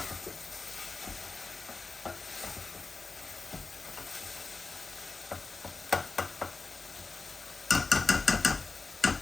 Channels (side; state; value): right; quieter; 3.9 dB